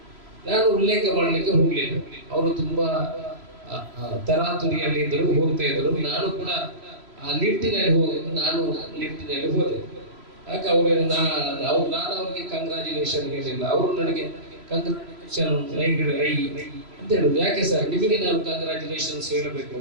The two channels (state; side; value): late; left; 3.1 ms